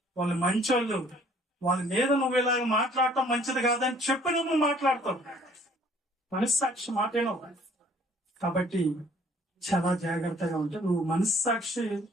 వాళ్ళు మంచోళ్ళు, వాళ్ళ మీద నువ్వు ఇలాగ మాట్లాడటం మంచిది కాదని చెప్పి నువ్వు మాట్లాడతావు. మనస్సాక్షి మాటేనో. కాబట్టి చాలా జాగ్రత్తగా ఉంటే నువ్వు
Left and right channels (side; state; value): both; normal; correlation 0.58